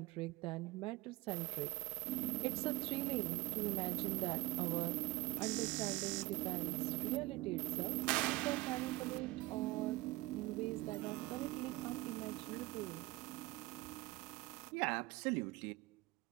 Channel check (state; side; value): quieter; left; 20.2 dB